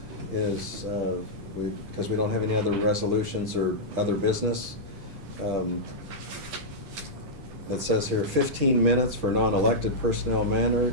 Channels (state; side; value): late; left; 10 ms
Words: is, because we don't have any other resolutions or other business, it says here 15 minutes for non-elected personnel